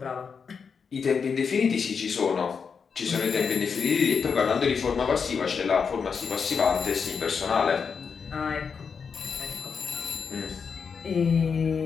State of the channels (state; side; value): quieter; right; 6.0 dB